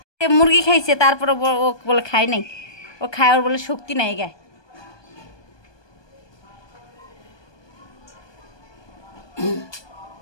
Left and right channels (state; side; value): late; right; 1.2 ms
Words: মুরগি খাইছে, তারপরে ও বলে খাই নাই, ও খায়, ওর বলে শক্তি নাই গায়ে।